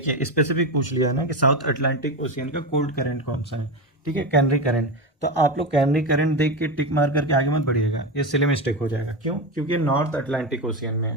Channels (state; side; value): normal; both; correlation 0.17